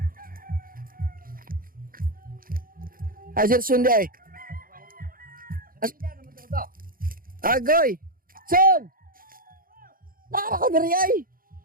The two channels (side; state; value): left; late; 0.41 ms